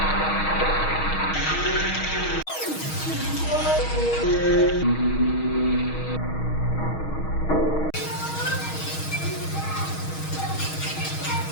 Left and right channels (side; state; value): right; late; 6.3 ms